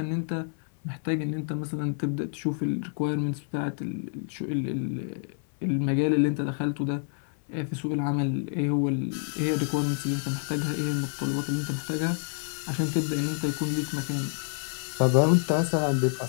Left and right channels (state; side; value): silent; right; 59 dB below the other